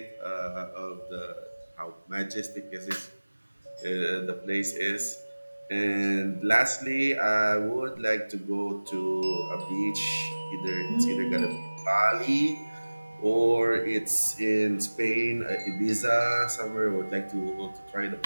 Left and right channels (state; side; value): inverted; both; correlation -1.00